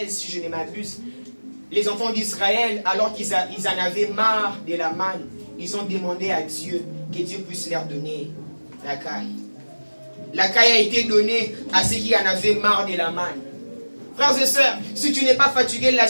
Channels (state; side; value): inverted; both; correlation -1.00